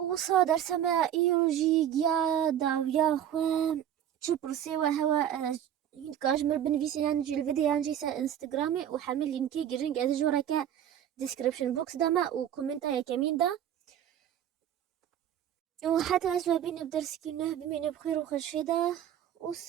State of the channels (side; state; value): left; quieter; 10.2 dB